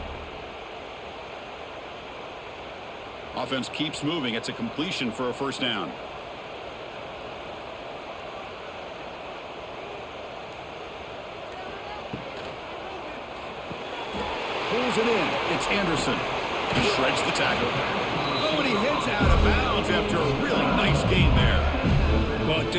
Offense keeps moving. It's a completion for a first down. Pulls it in. It's Anderson. He shreds the tackle. Oh, and he heads out of bounds after a really nice gain there. Well,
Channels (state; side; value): identical; both; correlation 1.00